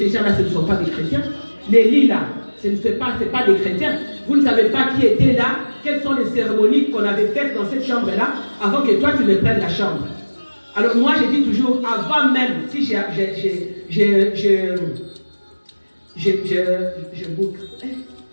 gens-là, ce ne sont pas des chrétiens. Les lits-là, ce ne sont pas des chrétiens. Vous ne savez pas qui était là, quelles sont les cérémonies qu'on avait faites dans cette chambre-là, avant que toi, tu ne prennes la chambre. Alors moi, je dis toujours, avant même, si je boucle.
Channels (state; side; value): inverted; both; correlation -1.00